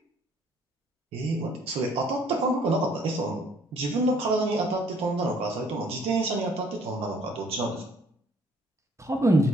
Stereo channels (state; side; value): normal; both; correlation 0.61